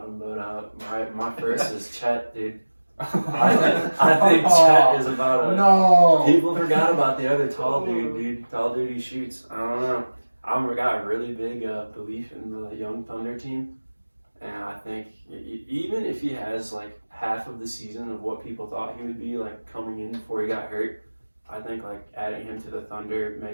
him, but my first is Chet, dude. I think Chet is about No. People forgot about the other tall dude. Tall dude who shoots. I don't know. I've got a really big belief in the young Thunder team, and I think even if he has like half of the season of what people thought he would be like coming in before he got hurt, I think like adding him to the Thunder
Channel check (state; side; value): inverted; both; correlation -1.00